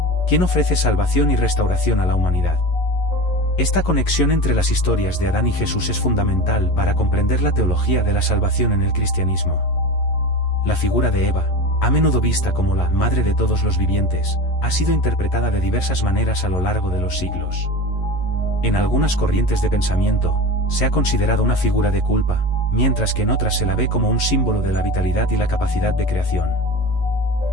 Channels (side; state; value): right; late; 11 ms